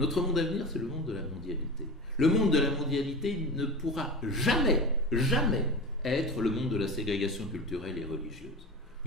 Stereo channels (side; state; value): both; normal; correlation 0.30